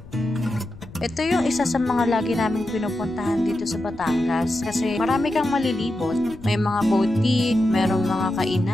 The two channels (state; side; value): noise; left; rumble, 18 dB below the sound